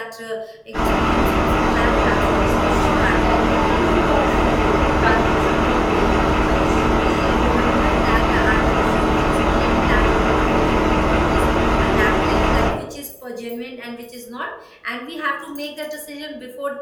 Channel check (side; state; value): both; identical; correlation 1.00